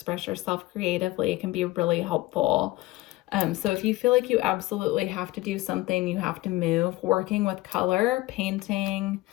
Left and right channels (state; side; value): quieter; right; 19.2 dB